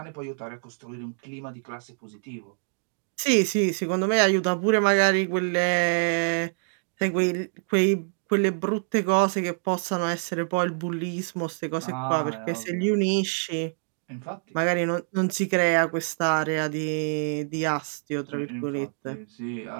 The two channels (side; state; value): left; silent; digital silence